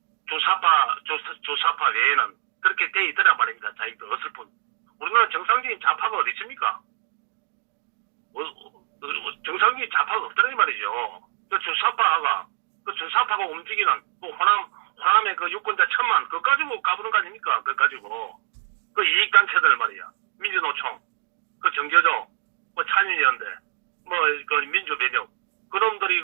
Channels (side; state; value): left; silent; digital silence